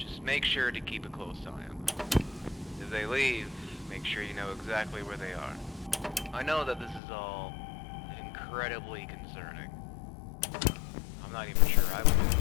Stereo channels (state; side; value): drops out; right; at 7.0 s